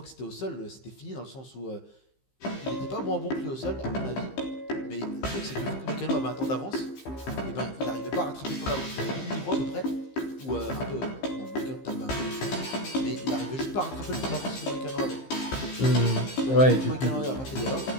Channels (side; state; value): right; late; 15 ms